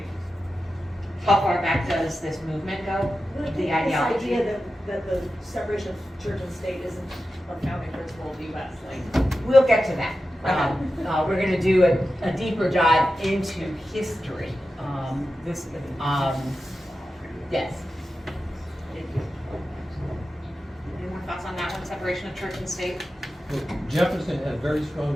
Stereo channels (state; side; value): normal; both; correlation 0.92